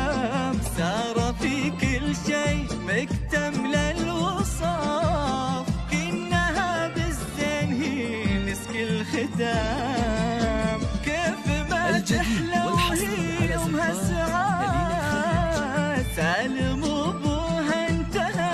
سارة في كل شيء مكتملة الوصاف، كأنها بالزين هي مسك الختام. كيف ما تحلى وهي يومها سعاد، سالم ابوها انتهى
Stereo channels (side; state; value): both; identical; correlation 1.00